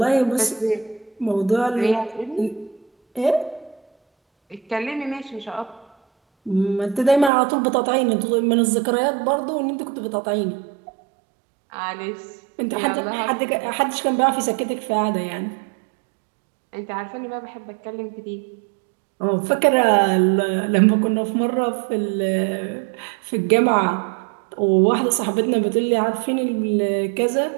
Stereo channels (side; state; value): left; drops out; at 7.3 s